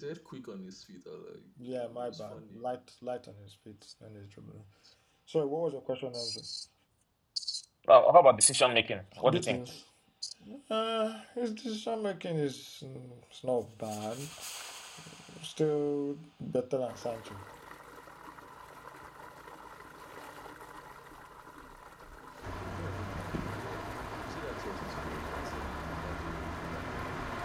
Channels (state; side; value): identical; both; correlation 1.00